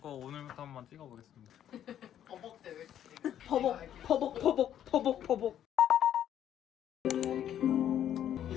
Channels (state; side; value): quieter; right; 10.5 dB